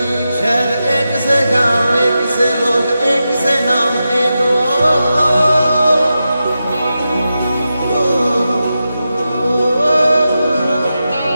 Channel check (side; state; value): both; inverted; correlation -0.90